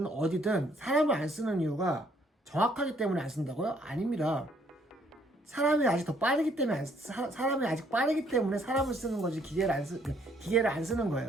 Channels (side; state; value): both; normal; correlation 0.65